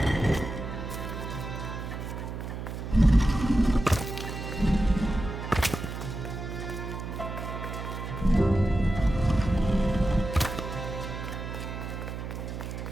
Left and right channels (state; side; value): noise; right; hum, 6 dB below the sound